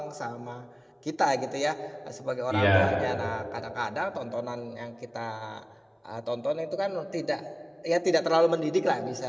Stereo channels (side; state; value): both; identical; correlation 1.00